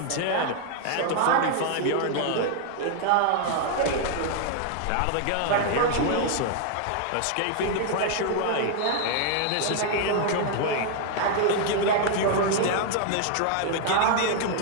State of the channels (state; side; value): different; both; correlation 0.00